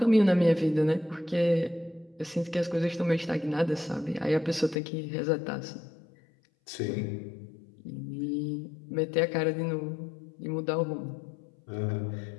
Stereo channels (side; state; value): right; drops out; at 4.8 s